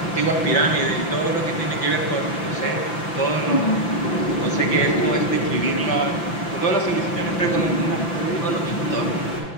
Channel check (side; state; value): right; late; 5.9 ms